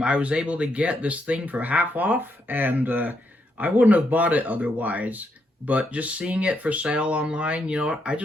was able to get this thing for half off, and I wouldn't have bought it otherwise, but just seeing it for sale online, you know what, I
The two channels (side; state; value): both; normal; correlation 0.78